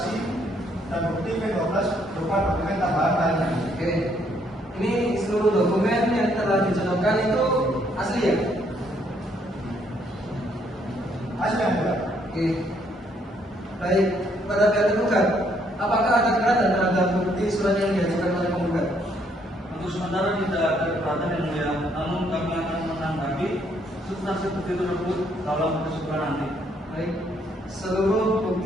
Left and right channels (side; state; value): both; normal; correlation 0.69